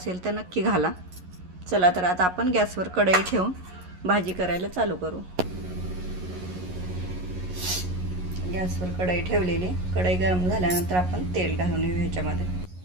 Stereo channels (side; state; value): left; late; 11 ms